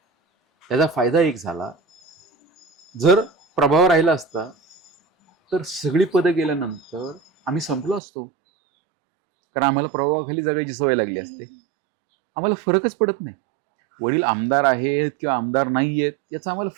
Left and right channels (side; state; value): left; drops out; at 8.0 s